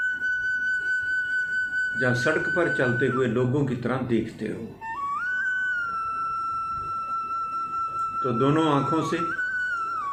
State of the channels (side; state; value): both; identical; correlation 1.00